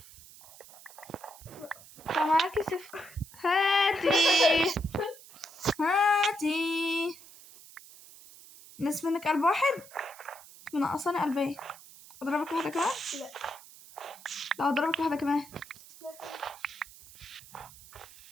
طب معاكي سيف؟ هاتي نصف منك قلب واحد، منقصاني قلبين. اضربك واحدة كمان؟ لا اضربك واحدة كمان.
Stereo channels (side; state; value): right; noise; hiss, 20 dB below the sound